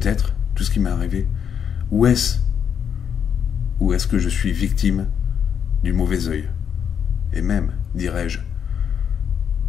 tout ce qui m'est arrivé? Ou est-ce que je suis victime du mauvais œil? Et même, dirais-je,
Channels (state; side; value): quieter; right; 7.9 dB